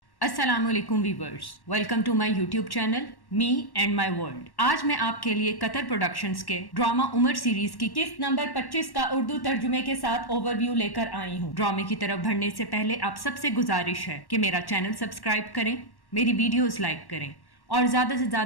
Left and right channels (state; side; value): late; right; 1.1 ms